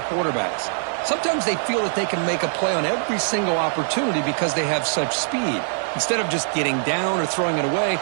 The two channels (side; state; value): left; silent; 62 dB below the other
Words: quarterbacks. Sometimes they feel that they can make a play on every single opportunity because they have such speed. Instead of just getting down or throwing it away,